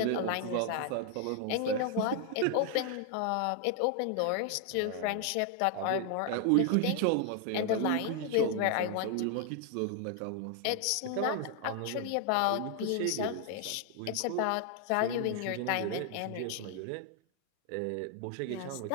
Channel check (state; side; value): different; both; correlation 0.00